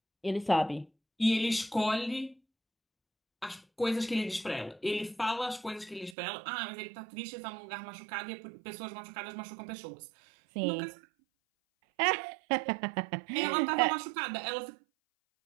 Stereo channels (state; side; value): drops out; left; at 6.2 s